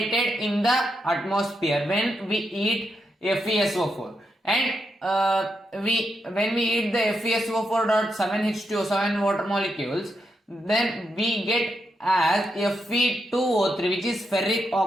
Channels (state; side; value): normal; both; correlation 0.83